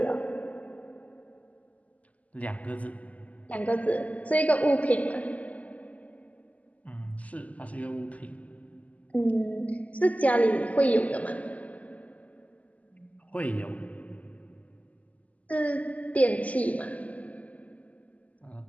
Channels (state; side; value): late; right; 0.071 ms